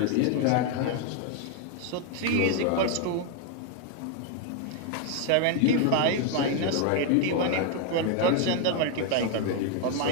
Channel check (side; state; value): both; different; correlation 0.00